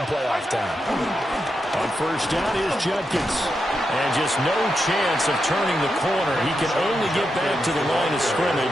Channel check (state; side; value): normal; both; correlation 0.86